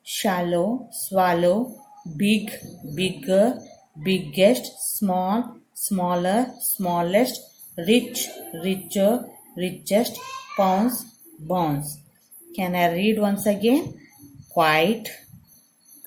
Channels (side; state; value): both; identical; correlation 1.00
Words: shallow, swallow, big, bigger, biggest, small, smaller, smallest, rich, richer, richest, pounds, bounce. Can I read once again? Quite,